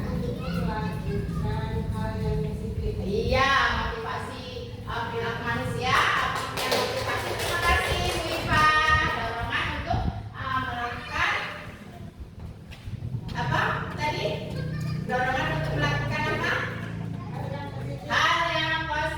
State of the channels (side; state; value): both; identical; correlation 1.00